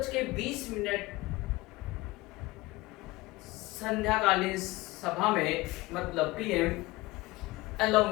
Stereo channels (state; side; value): quieter; right; 20.5 dB